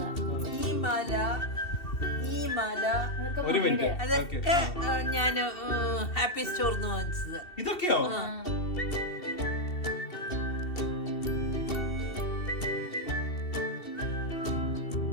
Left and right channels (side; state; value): right; late; 2.7 ms